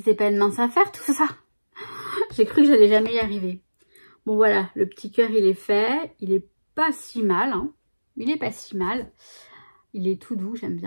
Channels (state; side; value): inverted; both; correlation -1.00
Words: pas une mince affaire, tout ça. J'ai cru que j'allais jamais y arriver. Bon, voilà, le petit cœur, il est fait. Il est pas si mal, hein. Il est pas si mal. Il est tout doux, j'aime